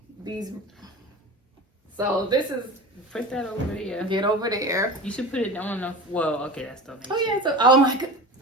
So this is. Put that over there. Get over there. You should put it on the. Well, okay, that's donation. Oh yeah. So oh my god.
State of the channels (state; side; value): normal; both; correlation 0.32